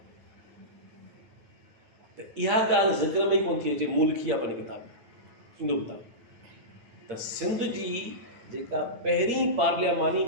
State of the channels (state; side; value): late; left; 9.2 ms